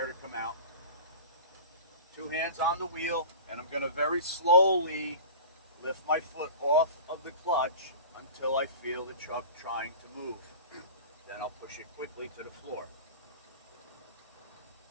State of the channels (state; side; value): inverted; both; correlation -0.36